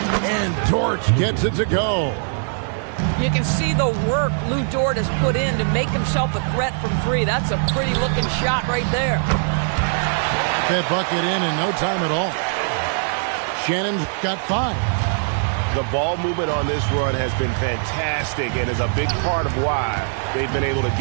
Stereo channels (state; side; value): silent; left; digital silence